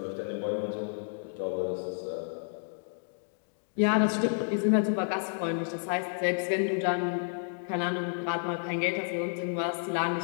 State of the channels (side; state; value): right; silent; digital silence